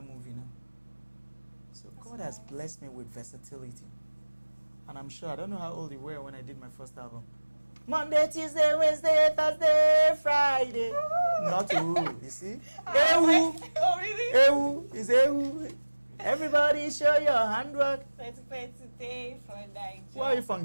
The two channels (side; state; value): both; inverted; correlation -1.00